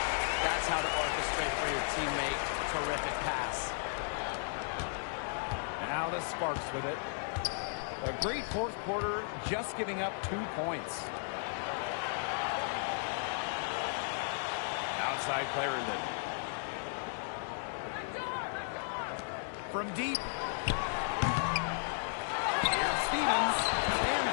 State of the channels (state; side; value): silent; right; digital silence